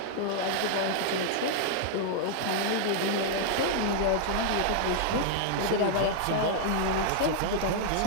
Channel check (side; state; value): both; different; correlation -0.01